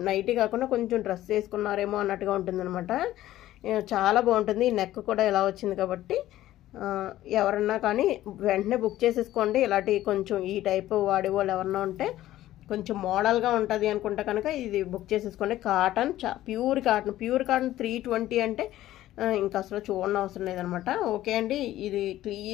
నైటీ కాకుండా కొంచెం డ్రెస్ వేసుకున్నారేమో అన్నట్టుగా ఉంటుంది అనమాట. చాలా బాగుంటుంది. ఈ నెక్ కూడా ఇలా వచ్చింది కాబట్టి ఎవరన్నా కానీ వెంటనే బుక్ చేసేసుకోండి. ఇలాంటి కొంచెం ఈ టైప్ వాడేవాళ్ళు ఎవరన్నా ఉంటే కొంచెం మోడల్గా ఉంటుంది అనుకుంటే కనుక ఇది బుక్ చేసేసుకోండి. కాటన్, ప్యూర్ కాటన్ 320 అంటే ఇంకా అసలు చూడడం అవసరం లేదనమాట. ఓకే అండి, ఇది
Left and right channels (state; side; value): quieter; right; 14.3 dB